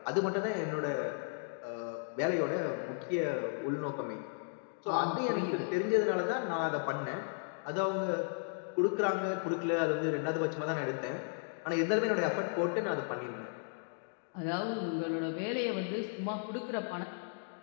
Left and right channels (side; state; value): right; silent; digital silence